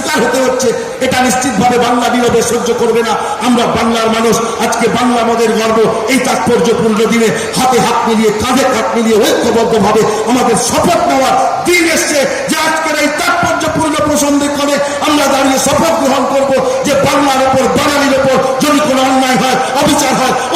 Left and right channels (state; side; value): identical; both; correlation 1.00